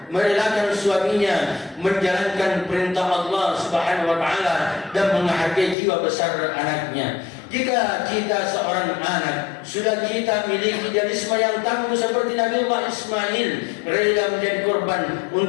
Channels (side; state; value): right; drops out; at 5.8 s